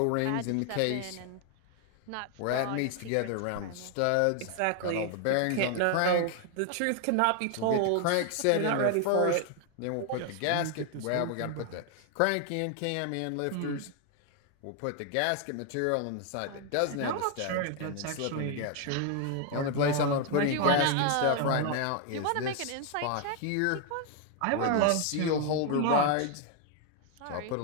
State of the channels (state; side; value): different; both; correlation 0.00